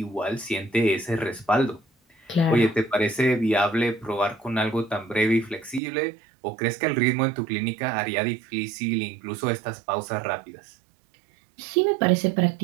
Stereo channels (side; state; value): left; drops out; at 5.8 s